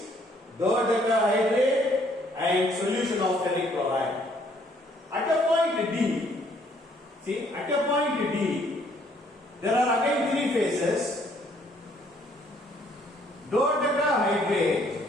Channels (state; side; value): normal; both; correlation 0.64